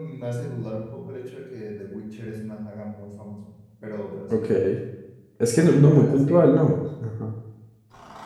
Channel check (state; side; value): identical; both; correlation 1.00